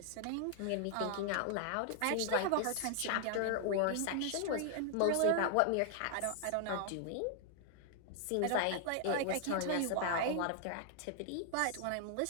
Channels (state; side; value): different; both; correlation 0.00